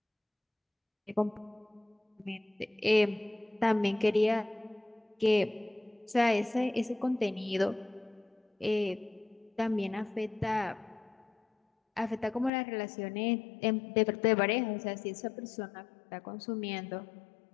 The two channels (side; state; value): right; drops out; at 12.5 s